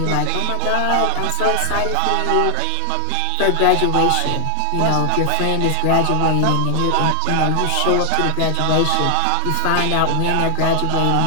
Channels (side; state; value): both; different; correlation 0.00